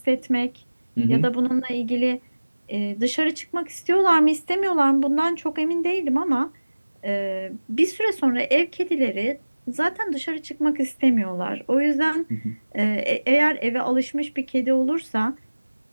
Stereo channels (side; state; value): both; inverted; correlation -1.00